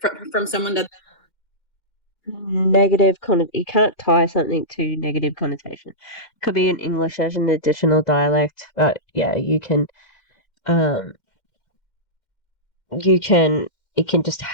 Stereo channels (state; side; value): late; right; 2.1 ms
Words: from someone that negative you can't tie something to negative connotation. Could be in English as an additional dialect, but yeah, it can just